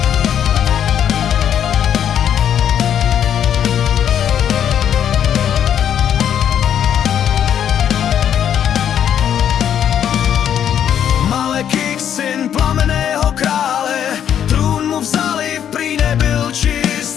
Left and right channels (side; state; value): right; quieter; 9.4 dB